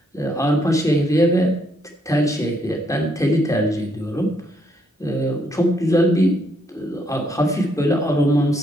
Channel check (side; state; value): both; normal; correlation 0.72